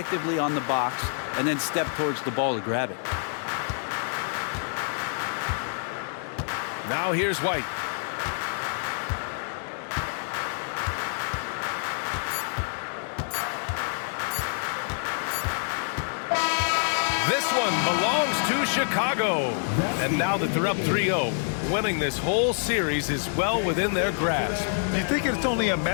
on the box and then stepped towards the ball to grab it. Now here's White. This one belongs to Chicago. And now that they're up 3-0, winning this whole series is well within their grasp. You think it's only a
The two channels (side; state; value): right; silent; 60 dB below the other